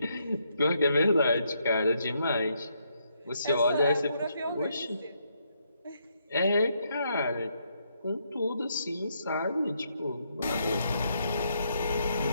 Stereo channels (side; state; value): both; inverted; correlation -0.76